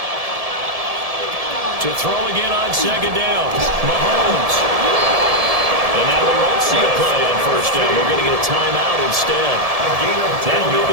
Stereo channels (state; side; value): late; left; 1.7 ms